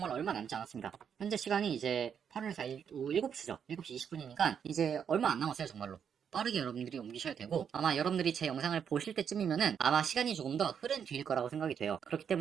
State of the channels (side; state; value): left; quieter; 7.7 dB